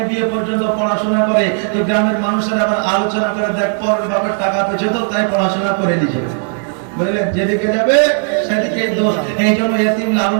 বিএ পর্যন্ত পড়াশোনা করে তো গ্রামের মানুষেরা আবার আলোচনা করে দেখ পরের বাপের টাকা পেয়েছে তো তাই পড়াশোনা করে নিয়েছে। বুঝলেন, যেদিকে যাবে সেদিকে দোষ। এই জন্য ইতিম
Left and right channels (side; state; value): left; silent; 55 dB below the other